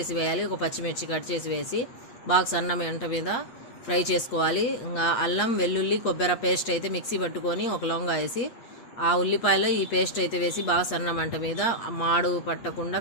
వేయాలి, ఒక పచ్చిమిర్చి కట్ చేసి వేసి బాగా సన్న మంట మీద ఫ్రై చేసుకోవాలి. ఇంకా అల్లం వెల్లుల్లి కొబ్బరి పేస్ట్ అయితే మిక్సీ పట్టుకొని ఒక లొంగ వేసి ఆ ఉల్లిపాయలో ఈ పేస్ట్ అయితే వేసి బాగా సన్న మంట మీద మాడు పట్టకుండా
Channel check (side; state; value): right; late; 8.5 ms